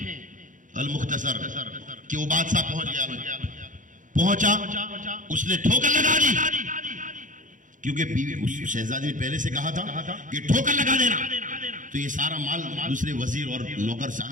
अल मुख्तसर कि वो बादशाह पहुंचा, उसने ठोकर लगा दी, क्योंकि बीवी उस शहजादी ने पहले से कहा था कि ठोकर लगा देना। तो ये सारा माल दूसरे वजीर और नौकर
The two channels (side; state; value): left; late; 0.38 ms